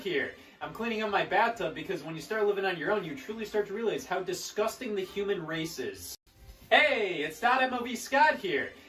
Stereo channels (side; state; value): both; identical; correlation 1.00